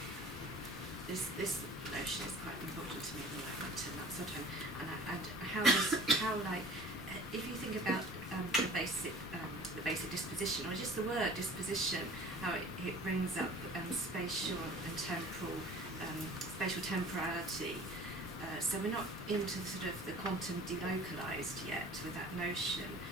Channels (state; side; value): normal; both; correlation 0.46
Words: this notion is quite important to me at the moment, and that sort of, and how like if you think about the basic disposition, or just the word disposition, how it brings up spatial and temporal, spatial temporality. So we're not into sort of the quantum delocalized yet with that notion.